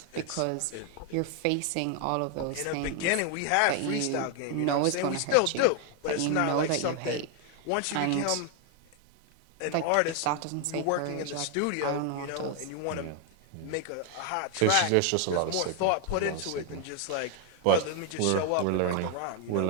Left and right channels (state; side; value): different; both; correlation 0.01